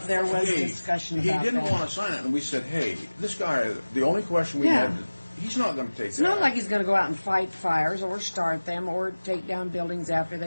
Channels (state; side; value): inverted; both; correlation -1.00